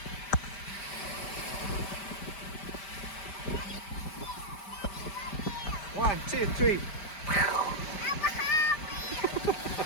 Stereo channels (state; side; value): late; right; 5.0 ms